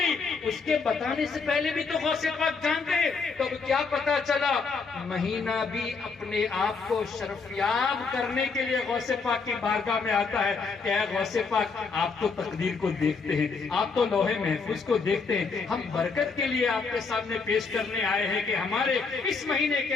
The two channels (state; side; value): quieter; right; 4.7 dB